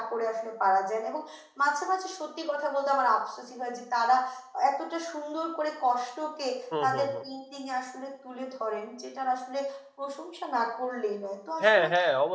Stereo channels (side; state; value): both; identical; correlation 1.00